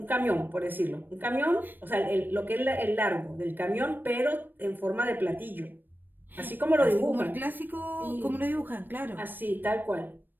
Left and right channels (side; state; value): left; late; 0.093 ms